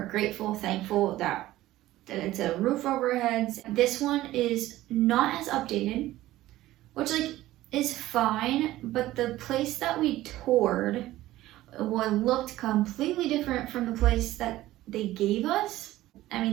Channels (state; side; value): quieter; left; 15.8 dB